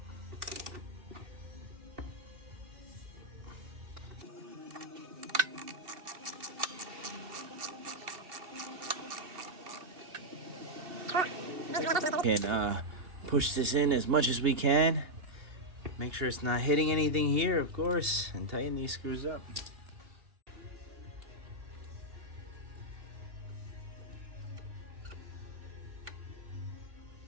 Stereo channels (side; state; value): left; late; 2.8 ms